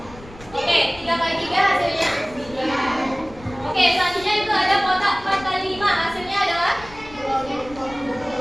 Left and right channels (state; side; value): noise; left; rumble, 19 dB below the sound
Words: oke, 3 kali 3 hasilnya 3. Oke, selanjutnya itu ada kotak 4 kali 5 hasilnya adalah oke,